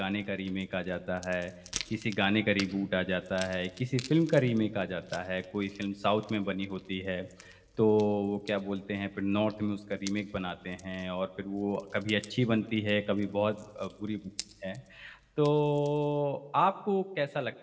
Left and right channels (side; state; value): both; identical; correlation 1.00